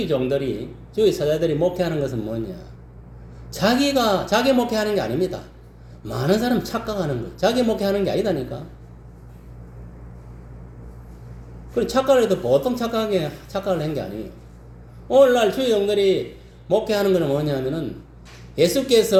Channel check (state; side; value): identical; both; correlation 1.00